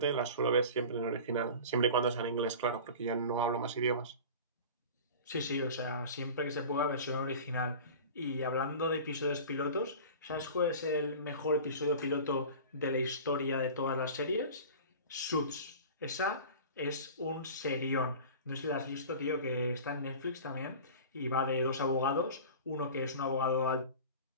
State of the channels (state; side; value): inverted; both; correlation -0.37